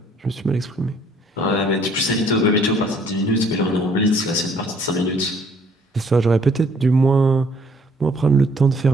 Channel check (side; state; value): both; normal; correlation 0.61